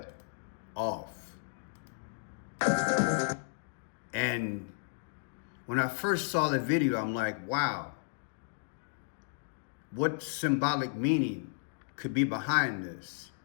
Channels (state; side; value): silent; right; digital silence